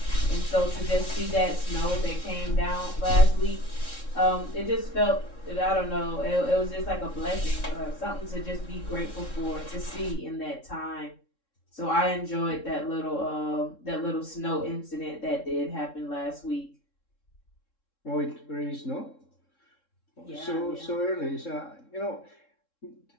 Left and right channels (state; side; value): late; right; 3.7 ms